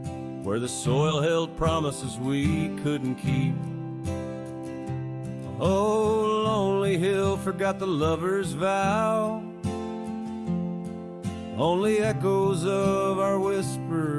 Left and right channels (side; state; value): both; identical; correlation 1.00